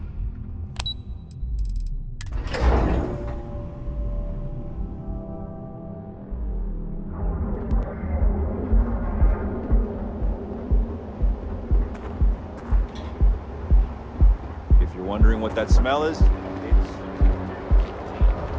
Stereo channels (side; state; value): both; identical; correlation 1.00